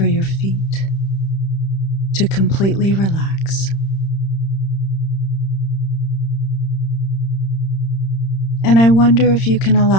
your feet to completely relax. And I wonder if you can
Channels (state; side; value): late; right; 31 ms